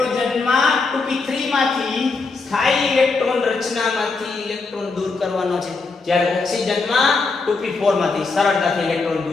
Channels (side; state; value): right; quieter; 4.1 dB